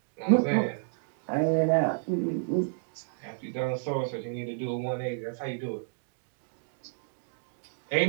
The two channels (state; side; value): silent; left; digital silence